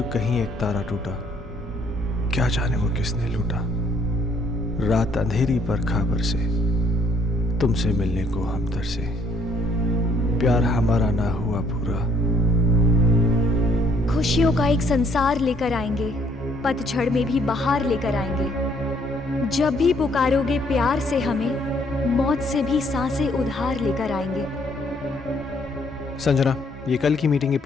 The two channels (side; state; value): both; normal; correlation 0.65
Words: कहीं एक तारा टूटा, क्या जाने वो किसने लूटा। रात अंधेरी पर खबर से तुमसे मिलने को हम तरसे, प्यार हमारा ना हुआ पूरा। खुशियों का एक संसार लेकर आएंगे, पतझड़ में भी बहार लेकर आएंगे। जब भी पुकारोगे प्यार से हमें, मौत से भी सांसें उधार लेकर आएंगे। संजना, ये कल की मीटिंग के